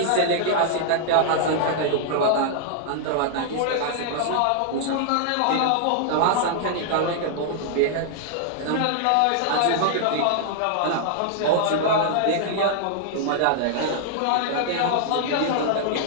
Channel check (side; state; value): both; different; correlation -0.01